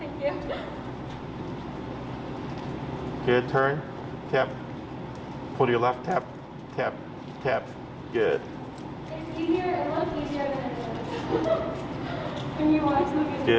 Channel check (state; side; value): identical; both; correlation 1.00